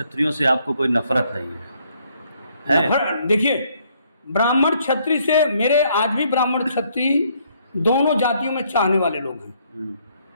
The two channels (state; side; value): inverted; both; correlation -0.68